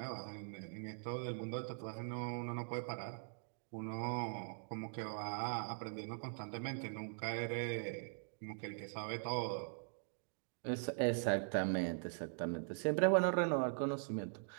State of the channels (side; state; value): left; silent; digital silence